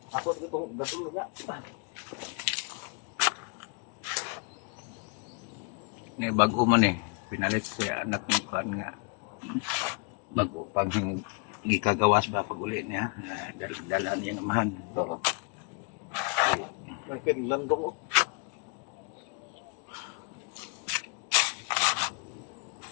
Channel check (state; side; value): quieter; right; 35.2 dB